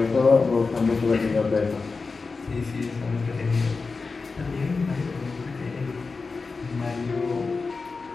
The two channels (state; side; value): quieter; right; 4.3 dB